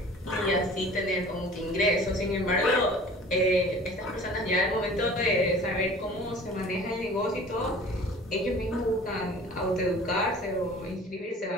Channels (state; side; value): normal; both; correlation 0.45